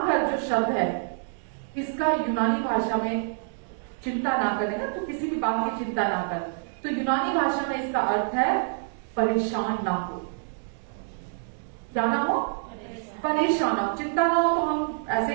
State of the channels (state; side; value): silent; left; digital silence